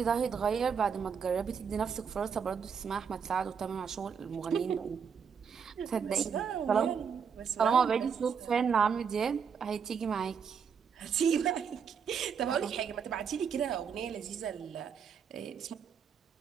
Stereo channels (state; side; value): quieter; left; 6.7 dB